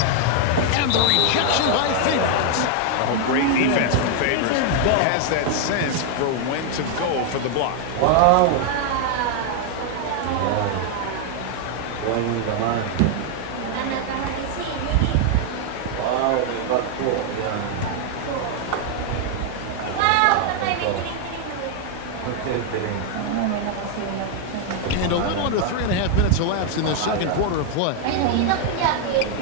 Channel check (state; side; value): different; both; correlation 0.00